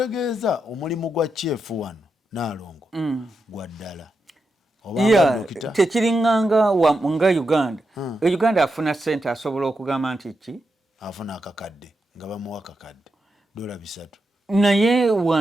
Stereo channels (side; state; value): both; normal; correlation 0.86